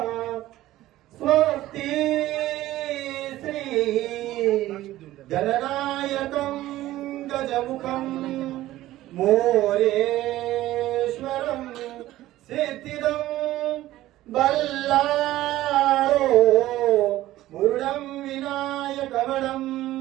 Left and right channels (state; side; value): quieter; left; 15.4 dB